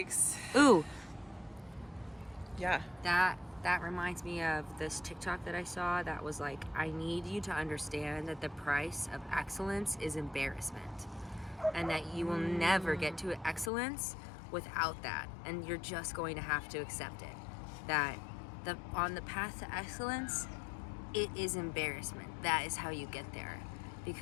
Ooh. Yeah. That reminds me of this TikTok that I saw that was like, I need you to understand that the price of excellence is embarrassment. And that you will never get to excellence without that. And you're just going to have to accept it. That on the path to excellence, it is embarrassment. That is how you get there.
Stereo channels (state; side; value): drops out; right; at 13.7 s